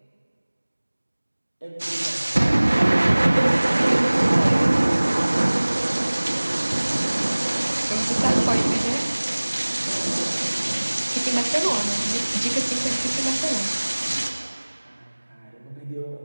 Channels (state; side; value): inverted; both; correlation -1.00